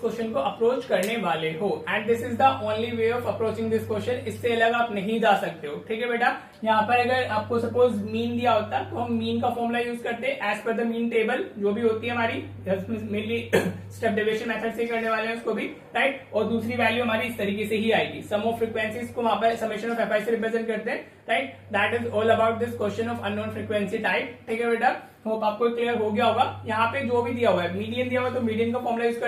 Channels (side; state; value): both; identical; correlation 1.00